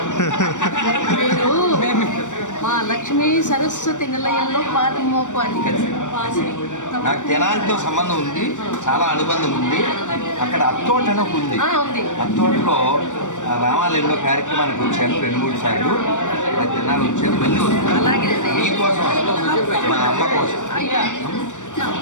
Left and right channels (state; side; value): late; right; 0.85 ms